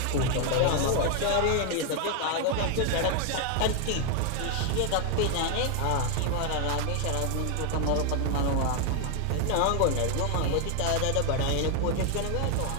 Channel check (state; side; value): different; both; correlation 0.00